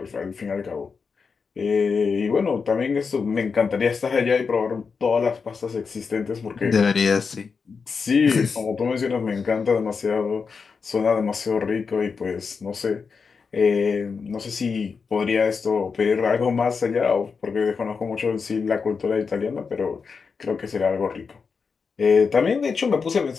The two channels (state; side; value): quieter; right; 5.3 dB